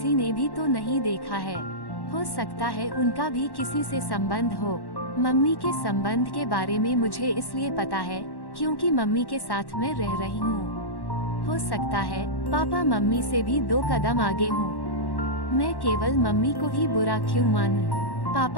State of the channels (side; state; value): right; late; 1.1 ms